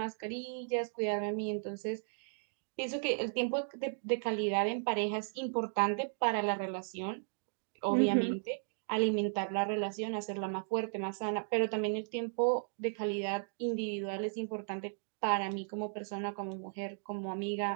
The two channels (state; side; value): silent; left; digital silence